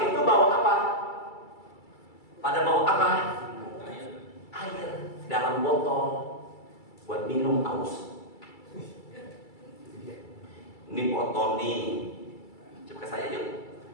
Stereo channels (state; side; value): late; right; 2.3 ms